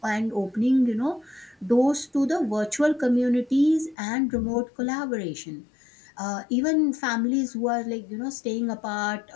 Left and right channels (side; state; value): right; drops out; at 4.0 s